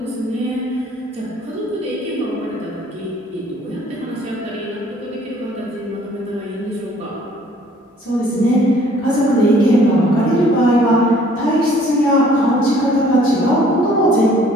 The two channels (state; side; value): normal; both; correlation 0.57